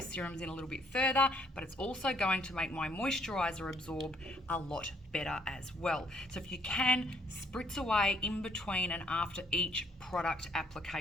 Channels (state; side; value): normal; both; correlation 0.66